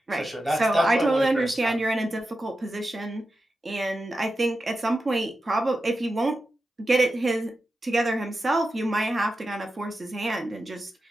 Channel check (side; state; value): both; normal; correlation 0.91